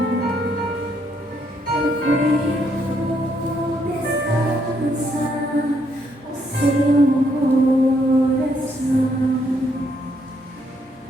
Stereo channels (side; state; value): both; normal; correlation 0.73